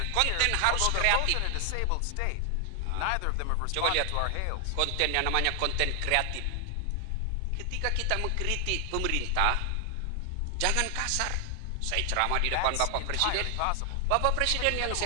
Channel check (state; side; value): different; both; correlation 0.00